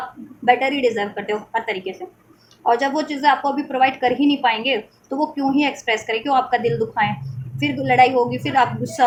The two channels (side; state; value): both; identical; correlation 1.00